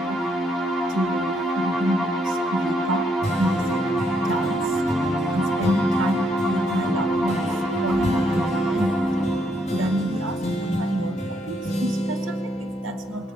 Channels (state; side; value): normal; both; correlation 0.74